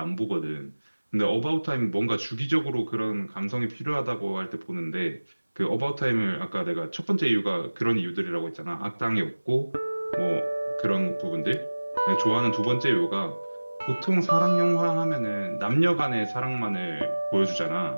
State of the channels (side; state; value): both; inverted; correlation -1.00